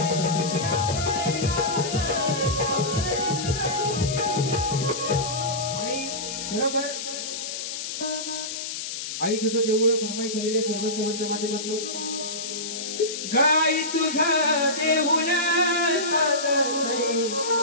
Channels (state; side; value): noise; left; hiss, 6 dB below the sound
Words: आई तुझं देऊळ फरमाईश आलेले सर्व सेवांच्या माध्यमातून गाई तुझं देऊळ साजतय